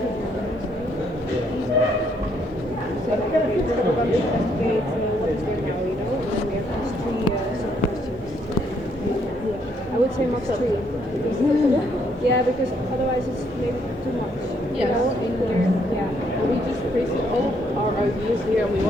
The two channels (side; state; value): both; normal; correlation 0.71